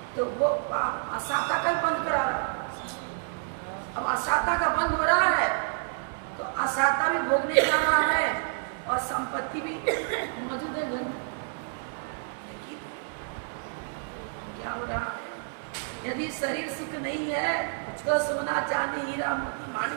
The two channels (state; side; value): silent; left; digital silence